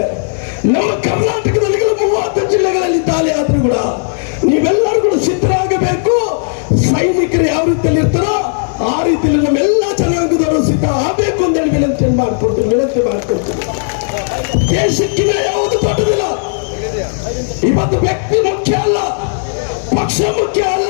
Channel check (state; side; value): silent; right; digital silence